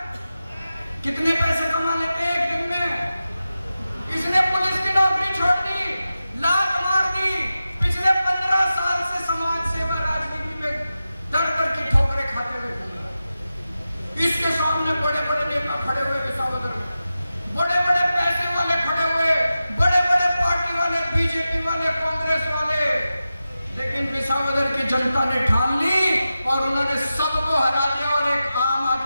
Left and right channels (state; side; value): inverted; both; correlation -0.93